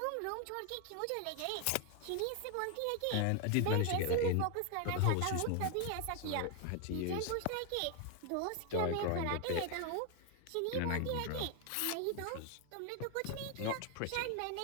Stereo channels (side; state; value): both; different; correlation 0.01